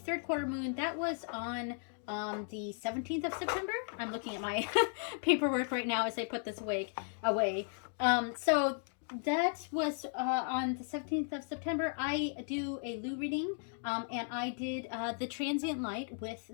quarter moon. That was on the 17th of September. I'm looking at my paperwork right now as I put this away. So that was on the 17th of September. I do a Lou reading, and I did the Transient Light with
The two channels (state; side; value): silent; right; 54 dB below the other